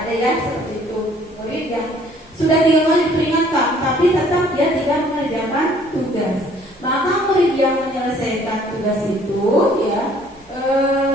ada ya seperti itu, murid yang sudah 3 kali diperingatkan tapi tetap dia tidak mengerjakan tugas, maka murid yang menyelesaikan tugas itu ya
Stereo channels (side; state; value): both; normal; correlation 0.58